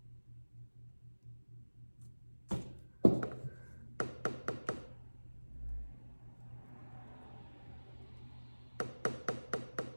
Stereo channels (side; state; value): both; inverted; correlation -1.00